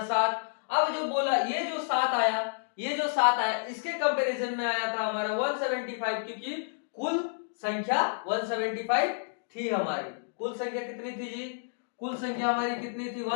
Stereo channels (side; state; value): right; silent; digital silence